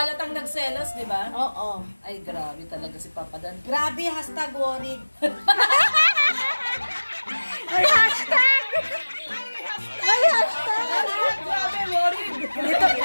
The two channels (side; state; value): both; inverted; correlation -1.00